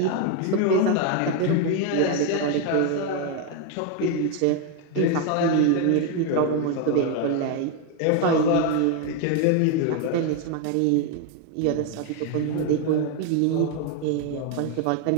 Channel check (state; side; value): different; both; correlation 0.01